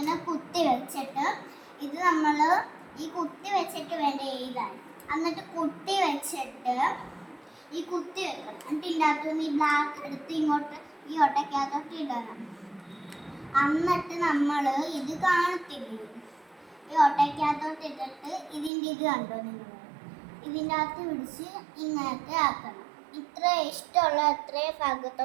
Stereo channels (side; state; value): left; drops out; at 18.7 s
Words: കുത്തി വെച്ചിട്ട് ഇത് നമ്മൾ ഈ കുത്തി വെച്ചിട്ട് വേണ്ട എഴുതാൻ. എന്നിട്ട് കുത്തി വെച്ചിട്ട് ഈ കുത്തി വെക്കണം. എന്നിട്ട് ഇതിൻ്റെ അകത്തുനിന്ന് ഈ ബ്ലാക്ക് എടുത്ത് ഇങ്ങോട്ട് ഈ ഒട്ടയ്ക്കകത്തോട്ട് ഇടണം. എന്നിട്ട് നമ്മൾ ഇത് കാണത്തില്ല, ഈ ഒട്ടയ്ക്കകത്തോട്ട് ഇട്ടിട്ട് ഇതിൻ്റെ ഇത് കണ്ടോ നിങ്ങൾ, ഇതിൻ്റെ അകത്ത് പിടിച്ച് ഇങ്ങനത്തെ ആക്കണം. ഇത്ര ഇഷ്ടമുള്ള അത്രയും